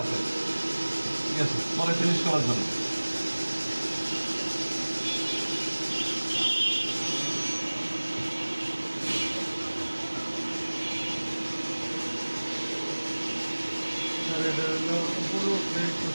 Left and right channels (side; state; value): both; inverted; correlation -1.00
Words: আছে, ঠিক আছে, পরে ফিনিশ করার জন্য। এটা হলো পুরো একটু